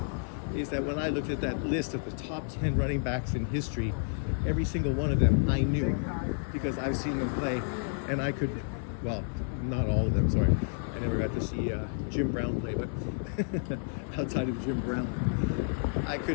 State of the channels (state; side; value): silent; right; digital silence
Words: is that when I looked at that list of the top 10 running backs in history, every single one of them I knew because I've seen them play, and I could, well, not all of them, sorry. I never got to see Jim Brown play, but outside of Jim Brown, I